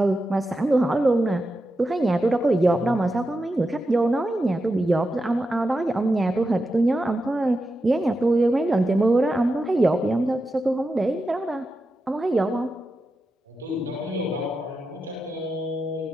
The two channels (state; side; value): normal; both; correlation 0.89